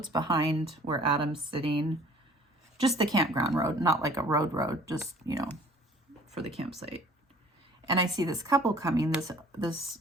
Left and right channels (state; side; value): normal; both; correlation 0.52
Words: behind where Adam's sitting. Just the campground road, not like a road, just, you know, for the campsite. And I see this couple coming. This